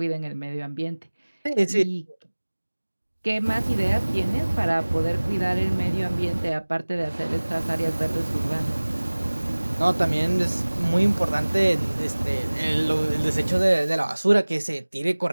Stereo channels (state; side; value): inverted; both; correlation -1.00